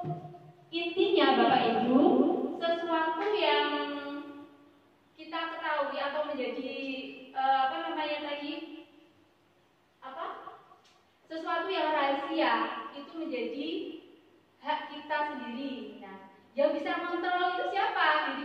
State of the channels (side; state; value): both; identical; correlation 1.00